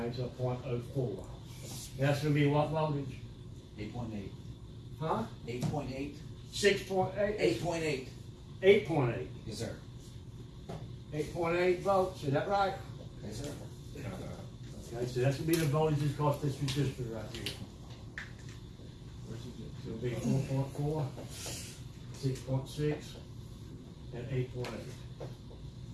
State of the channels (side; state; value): both; identical; correlation 1.00